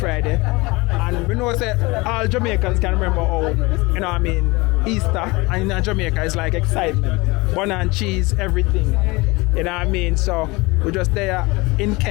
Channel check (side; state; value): right; quieter; 23.8 dB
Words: And we know that all Jamaicans can remember how, you know what I mean, Easter and in Jamaica is like excitement. Bun and cheese, everything. You know what I mean? So we're just there in